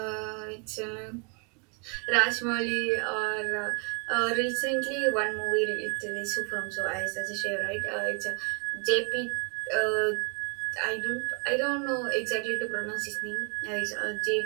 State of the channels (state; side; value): quieter; left; 36.9 dB